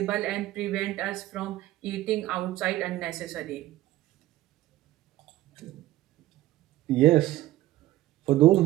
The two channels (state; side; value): quieter; left; 15.5 dB